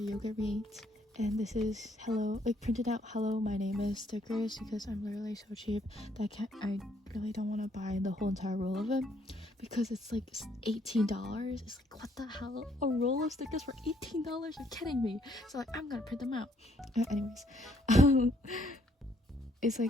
yogurt we ate. And this is hello, like printed out hello my name is stickers, because I'm literally so cheap that I really don't want to buy the whole entire roll of it, because it's like $18. It's like, what the hell, a roll of stickers for $18? You're kidding me. So like, I'm gonna print them out. Anyways, it's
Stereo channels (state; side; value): normal; both; correlation 0.68